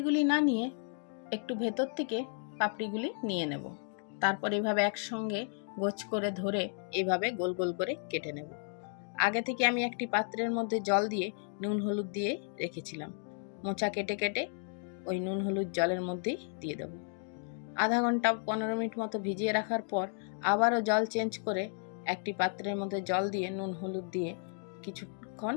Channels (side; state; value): right; silent; 55 dB below the other